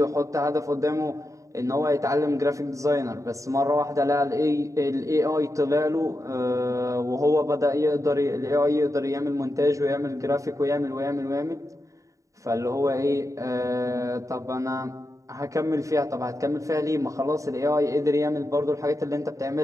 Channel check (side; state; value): left; late; 0.16 ms